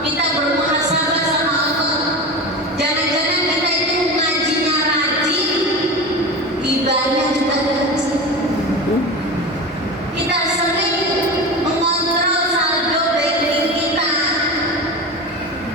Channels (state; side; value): normal; both; correlation 0.27